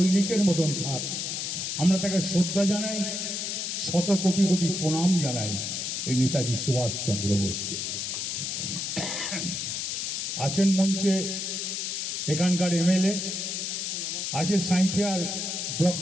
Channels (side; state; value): left; noise; hiss, 2 dB below the sound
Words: মতন থাক। আমরা তাকে শ্রদ্ধা জানাই, শত কোটি কোটি প্রণাম জানাই এই নেতাজি সুভাষচন্দ্র বোসকে। আছেন মঞ্চে এখানকার এমএলএ, আছে সাঁইথিয়ার ব্লক